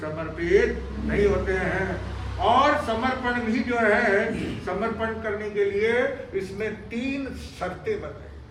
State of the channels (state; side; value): identical; both; correlation 1.00